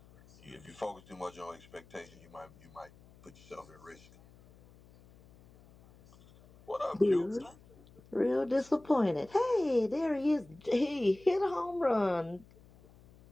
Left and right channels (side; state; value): left; noise; hum, 25 dB below the sound